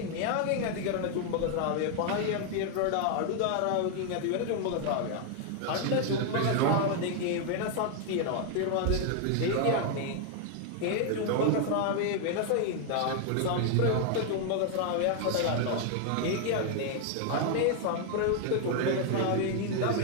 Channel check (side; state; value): both; different; correlation 0.00